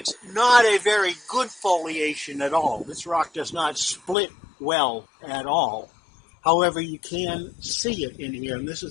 not a very good foliation at all. This rock does not split well at all. However, you can see it in here, and this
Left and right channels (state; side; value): drops out; right; at 4.2 s